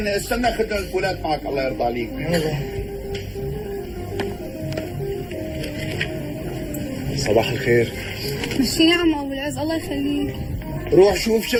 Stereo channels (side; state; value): both; identical; correlation 1.00